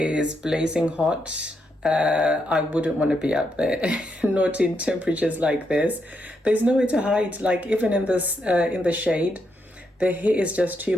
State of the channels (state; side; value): normal; both; correlation 0.80